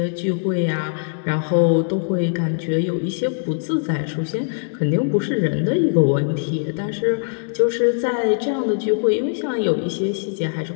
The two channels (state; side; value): silent; right; digital silence